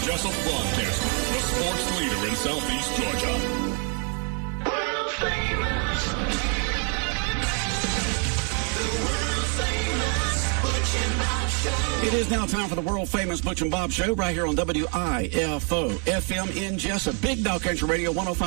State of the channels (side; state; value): left; quieter; 39.5 dB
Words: Jessup Broadcast, the sports leader in Southeast Georgia. World famous. The world famous Butch and Bob Show. It is now time for the world-famous Butch and Bob Show right here on WIFO FM in Jessup. Big Dog Country Radio